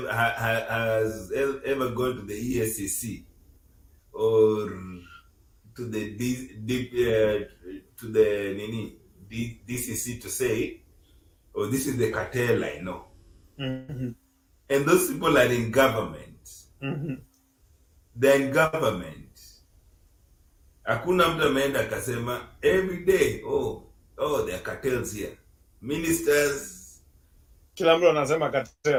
has ever gone to the ESCC or to the DCC to say, oh, this is the cartel I know. Mm-hmm. And those people are in government. Mm-hmm. They're in government. Hakuna mtu ameenda akasema every day, oh, there are cartels here. Ministers. Kila mtu anasema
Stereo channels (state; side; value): identical; both; correlation 1.00